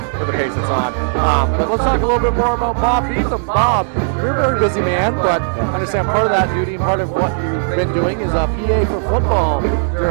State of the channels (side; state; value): left; silent; 67 dB below the other